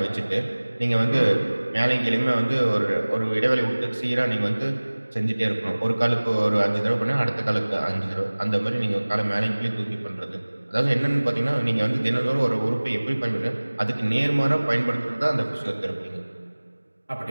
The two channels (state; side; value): inverted; both; correlation -1.00